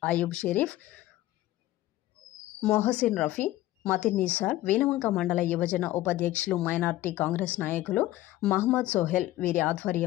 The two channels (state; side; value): quieter; right; 15.7 dB